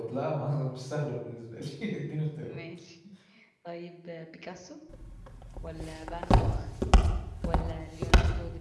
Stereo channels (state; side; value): identical; both; correlation 1.00